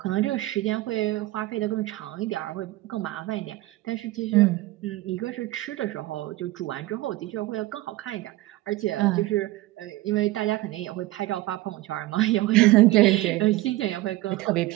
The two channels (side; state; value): left; quieter; 17.7 dB